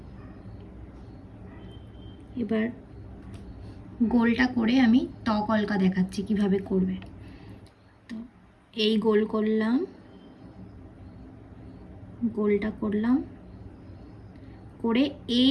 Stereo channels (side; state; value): both; identical; correlation 1.00